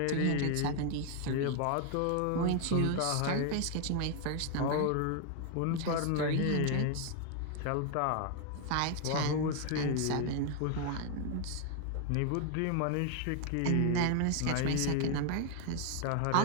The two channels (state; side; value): different; both; correlation 0.00